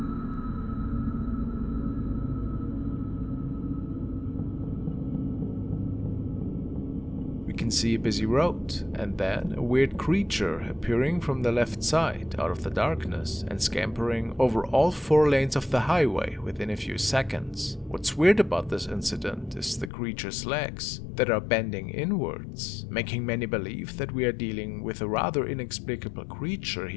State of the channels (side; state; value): right; drops out; at 19.9 s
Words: Can see a busy road, and then a weird creature appearing from the left side out of the darkness and scampering over all 4 lanes of the highway within a few seconds. What's weird about this incident is the creature's legs that are bending inwards, making many believe that we are dealing with a rather inexplicable creature